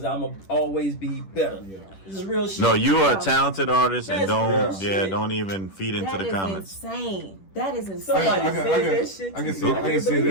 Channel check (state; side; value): late; right; 10 ms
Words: I'ma always be better. This is real shit. No, you are a talented artist, and That's real shit. don't even feed into the comments. Insane. That is insane. Somebody said that shit to I can you. say, I can say